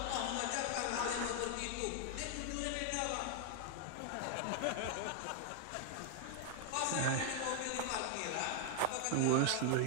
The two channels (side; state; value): both; different; correlation 0.00